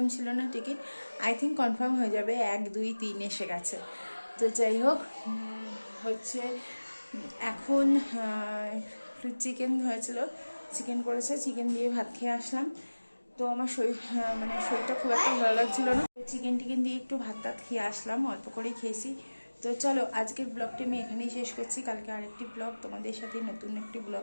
ছিল না টিকিট, আই থিঙ্ক কনফার্ম হয়ে যাবে, 1, 2, 3 এসে গেছে। তো যাই হোক, হচ্ছে এখন চিকেন হয়েছিল, চিকেন করেছে, চিকেন দিয়ে ভাত খেয়ে আসলাম। তো আমার মানে শরীরটা খুব একটা ভালো লাগছিল না, চিকেন টিকেন দিয়ে একটু ভাত টাত খেয়ে আসলাম, অল্প করেই খেয়েছি। তো চলো আজকের ব্লগটি আমি এখানেই শেষ করছি, কালকে আরেকটি ব্লগ তোমাদের সাথে নতুন একটি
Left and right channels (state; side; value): inverted; both; correlation -1.00